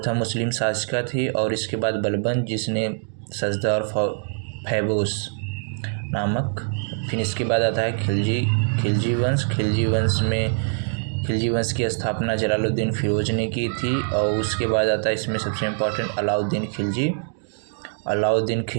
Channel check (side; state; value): left; silent; digital silence